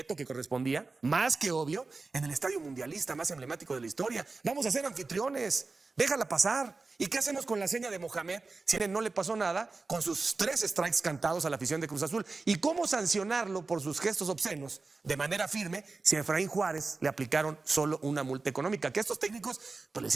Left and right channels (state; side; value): quieter; left; 3.9 dB